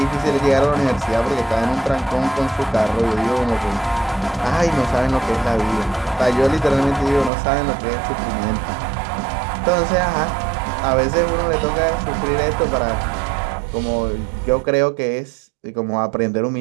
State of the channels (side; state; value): left; drops out; at 7.3 s